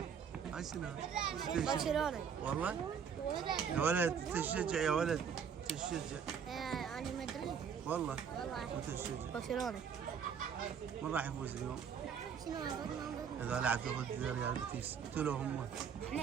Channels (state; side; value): quieter; left; 7.2 dB